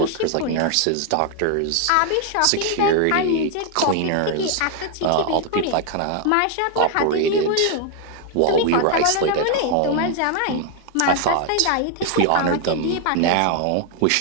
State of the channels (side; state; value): both; different; correlation 0.00